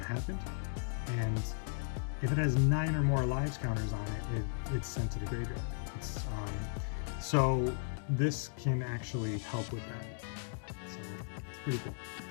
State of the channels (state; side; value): silent; right; digital silence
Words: happened. and if it has 9 or more lives counters on it, it's sent to the graveyard. So this can actually help with that. So it's pretty cool.